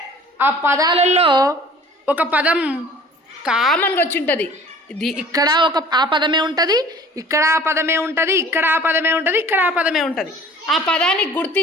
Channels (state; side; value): normal; both; correlation 0.48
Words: ఆ పదాలలో ఒక పదం కామన్గా వచ్చి ఉంటుంది. ఇక్కడ ఆ పదమే ఉంటుంది, ఇక్కడ ఆ పదమే ఉంటుంది, ఇక్కడ ఆ పదమే ఉంటుంది, ఇక్కడ ఆ పదమే ఉంటుంది. ఆ పదాన్ని